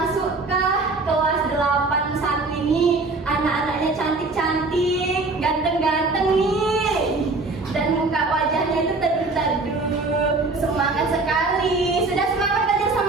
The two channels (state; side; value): quieter; left; 3.5 dB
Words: ke kelas 81 ini anak-anaknya cantik-cantik, ganteng-ganteng nih. Dan muka wajahnya itu teduh-teduh, semangat sekali. Sudah semangat belajar